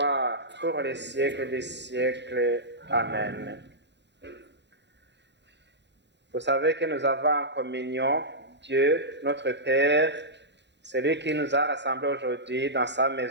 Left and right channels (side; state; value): left; late; 0.51 ms